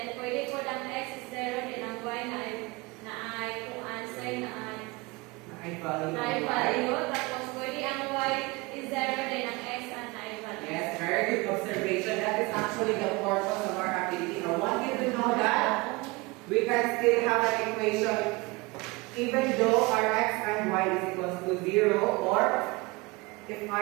pwede po ang x is 0, then ang y na ay kung answer na ay value, tapos pwede ang y is 0, then ang x na ay value. Yes, very good observation. That is actually the purpose of our activity. I want you to know that we can still have an equation even though our x and y is equals to 0, or if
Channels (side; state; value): left; quieter; 24.6 dB